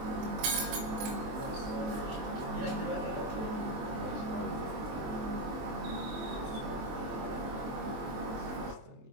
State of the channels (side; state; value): left; late; 23 ms